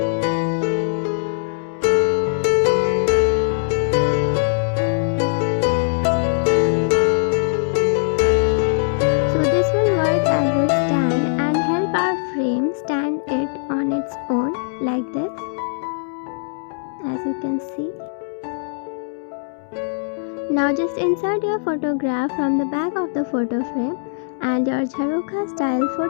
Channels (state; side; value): silent; right; 65 dB below the other